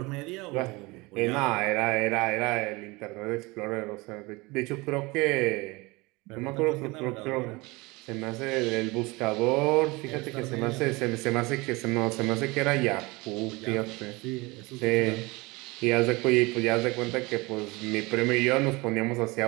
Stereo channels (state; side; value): quieter; left; 24.0 dB